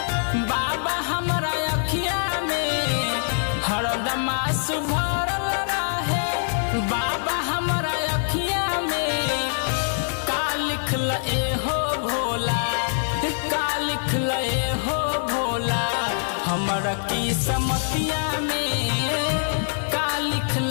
बाबा हमरा अखिया में, हरदम आंसू भरल रहे बाबा हमरा अखिया में। का लिखल एहो भोला, का लिखल एहो भोला हमरा किस्मतिया में, का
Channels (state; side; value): silent; right; digital silence